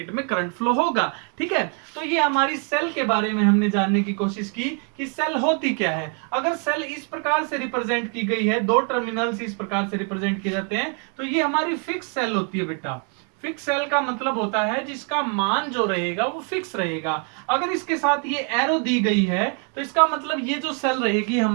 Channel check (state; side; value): quieter; left; 37.3 dB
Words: में करंट फ्लो होगा। ठीक है, तो ये हमारी सेल के बारे में हमने जानने की कोशिश की कि सेल होती क्या है। अगर सेल इस प्रकार से रिप्रेजेंट की गई है, दो टर्मिनल्स इस प्रकार से रिप्रेजेंट किए जाते हैं, तो ये हमारी फिक्स सेल होती है बेटा। फिक्स सेल का मतलब होता है जिसका मान जो रहेगा वो फिक्स रहेगा। अगर इसके साथ ये एरो दी गई है तो इसका मतलब ये जो सेल रहेगी